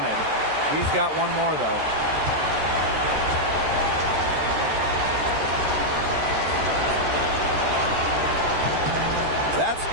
He's got one more, though. That's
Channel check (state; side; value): late; left; 13 ms